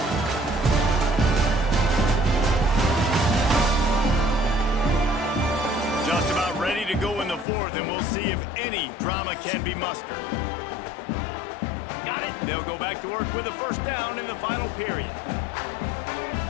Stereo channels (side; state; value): right; drops out; at 7.5 s